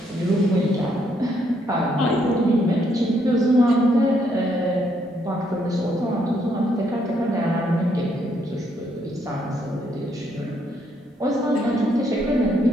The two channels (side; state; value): both; normal; correlation 0.73